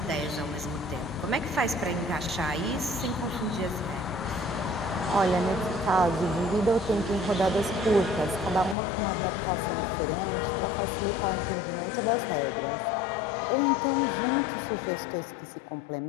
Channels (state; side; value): drops out; right; at 8.8 s